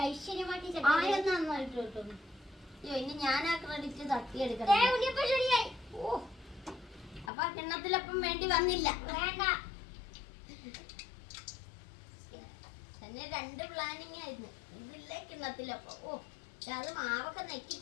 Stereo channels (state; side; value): drops out; right; at 7.3 s